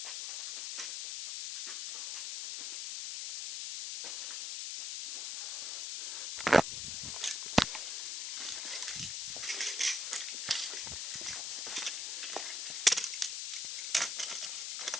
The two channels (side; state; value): left; noise; hiss, 2 dB below the sound